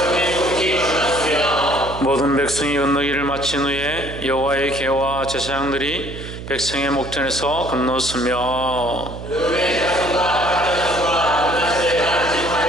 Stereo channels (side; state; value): right; noise; hum, 10 dB below the sound